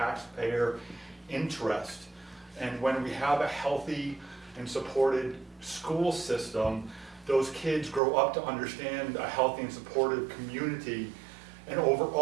interest. And when we have a healthy and supported school system, those kids grow up to understand a healthy and supportive community And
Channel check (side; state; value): left; drops out; at 8.0 s